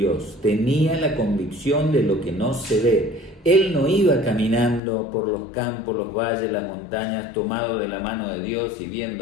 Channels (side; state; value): right; drops out; at 4.8 s